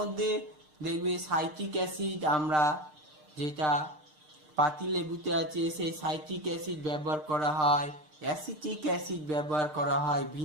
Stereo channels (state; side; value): late; left; 6.6 ms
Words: দেখবে সাইট্রিক অ্যাসিড, আমরা যেটা পাতিলেবুতে আছে সেই সাইট্রিক অ্যাসিড ব্যবহার করা হয়, অ্যাসিটিক অ্যাসিড ব্যবহার করা হয়,